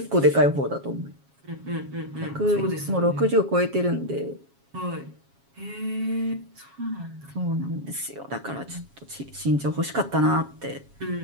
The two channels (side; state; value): left; late; 7.3 ms